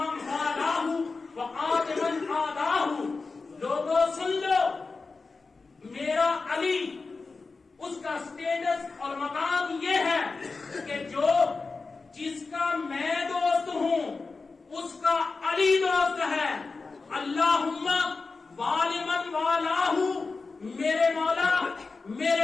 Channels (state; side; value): quieter; right; 4.1 dB